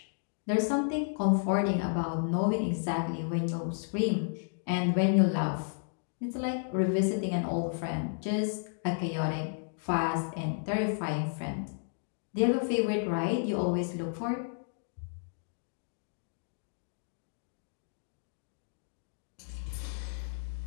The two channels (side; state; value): right; silent; digital silence